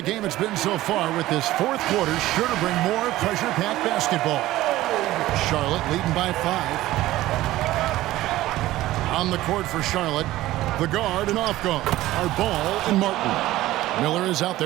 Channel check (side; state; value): left; quieter; 16.0 dB